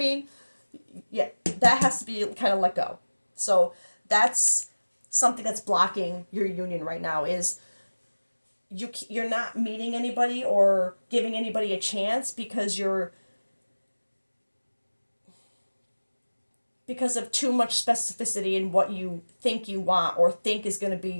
Yeah, that has to be kind of let go. So that's something that's blocking your union right now, is you're not meeting anybody or giving anybody a chance because of too much specificity in what you think you want or think is going to be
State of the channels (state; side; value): inverted; both; correlation -1.00